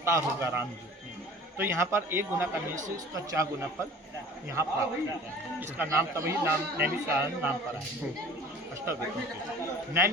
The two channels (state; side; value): normal; both; correlation 0.45